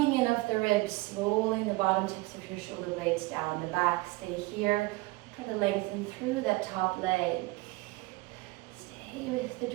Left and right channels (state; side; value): quieter; left; 22.1 dB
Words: in off the ribs, rolling the bottom tips of your shoulder blades down the back. Stay here. Try to lengthen through that top leg. Stay with the